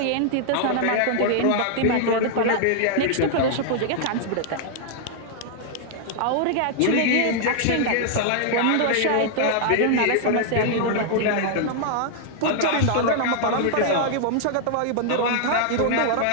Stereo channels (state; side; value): different; both; correlation -0.01